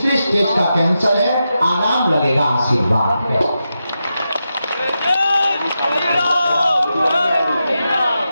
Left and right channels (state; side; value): inverted; both; correlation -0.89